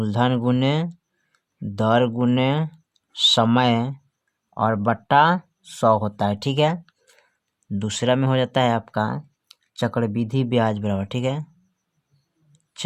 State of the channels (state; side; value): identical; both; correlation 1.00